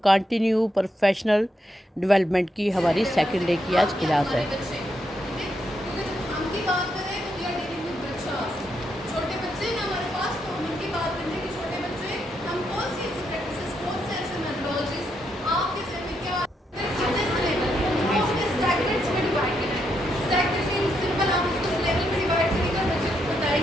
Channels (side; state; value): both; normal; correlation 0.80